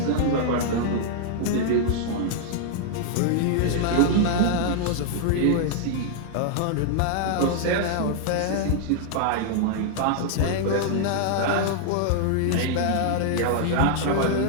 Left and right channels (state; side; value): different; both; correlation -0.01